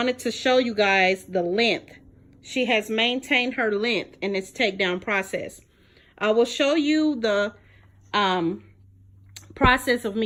to show you guys the length. She has maintained her length in this takedown process. I will show you the process of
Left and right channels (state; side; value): identical; both; correlation 1.00